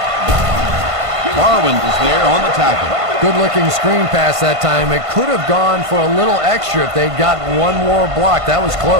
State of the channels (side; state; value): left; late; 1.5 ms